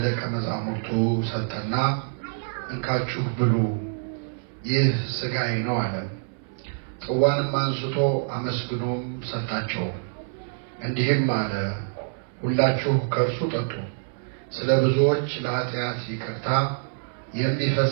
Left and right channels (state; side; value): silent; left; 58 dB below the other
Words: መዛሙርቱ ሰጠና እንካችሁ ብሉ፣ ይህ ሥጋዬ ነው አለ። ጽዋንም አንስቶ አመስግኖም ሰጣቸው፣ እንዲህም አለ፣ ሁላችሁ ከእርሱ ጠጡ፣ ስለ ብዙዎች ለኃጢአት ይቅርታ